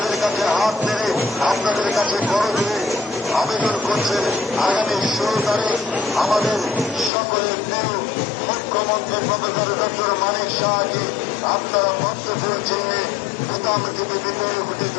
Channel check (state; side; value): drops out; right; at 7.1 s